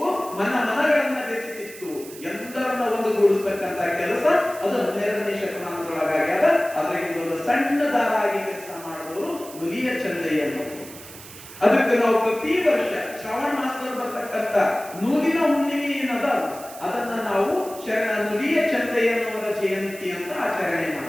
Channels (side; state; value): right; noise; hiss, 16 dB below the sound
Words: ಮನಗಳನ್ನ ಬೆಸಿತಿತ್ತು. ಎಲ್ಲರನ್ನ ಒಂದುಗೂಡಿಸ್ತಕ್ಕಂಥ ಕೆಲಸ ಅದು 12ನೇ ಶತಮಾನದೊಳಗಾಗ್ಯದ. ಅದರಿಂದ ಒಂದು ಸಣ್ಣ ದಾರ ಆಗಿ ಕೆಲಸ ಮಾಡಿದವರು ನುಲಿಯ ಚಂದಯ್ಯನವರು. ಅದಕ್ಕೆ ನಾವು ಪ್ರತಿ ವರ್ಷ ಶ್ರಾವಣ ಮಾಸದಲ್ಲಿ ಬರ್ತಕ್ಕಂಥ ನೂಲಿನ ಹುಣ್ಣಿಮೆ ಏನದ ಅದನ್ನ ನಾವು ಶರಣ ನುಲಿಯ ಚಂದಯ್ಯನವರ ಜಯಂತಿ ಅಂತ ಆಚರಣೆ